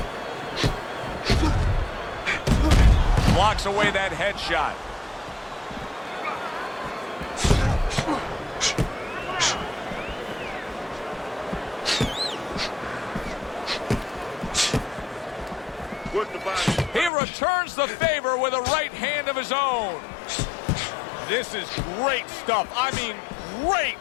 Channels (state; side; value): drops out; right; at 17.1 s